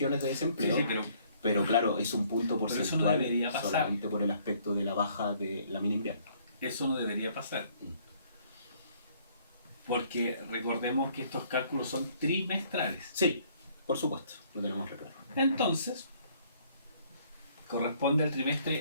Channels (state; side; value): inverted; both; correlation -0.62